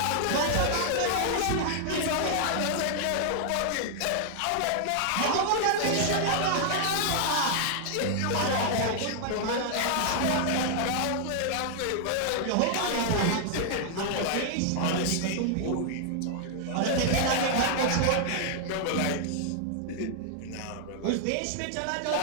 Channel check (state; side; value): different; both; correlation 0.00